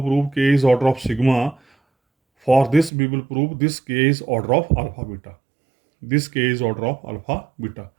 prove k is order of sigma, for this we will prove this k is order of alpha beta, this k is order of alpha beta.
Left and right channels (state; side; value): drops out; left; at 2.9 s